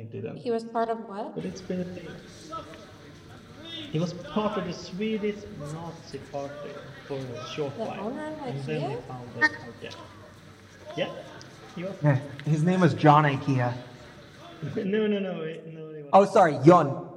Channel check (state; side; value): identical; both; correlation 1.00